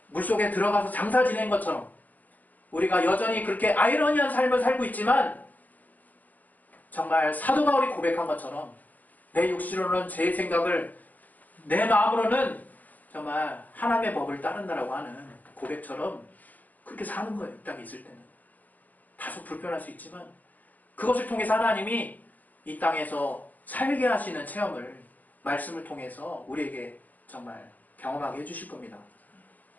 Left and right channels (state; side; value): late; right; 0.081 ms